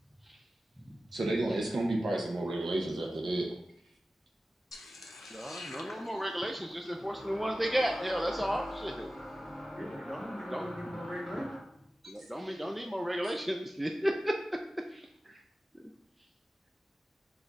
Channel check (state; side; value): normal; both; correlation 0.95